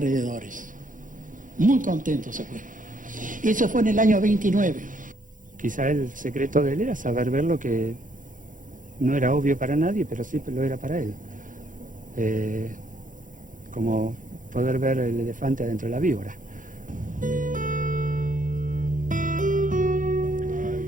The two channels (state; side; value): late; left; 0.38 ms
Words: Muy contento se fue. Eso fue en el año 29. Quizá el secreto de él era saber ver lo que no era obvio para nadie, pero sí lo era para él. Como poder ver el elefante adentro de la víbora.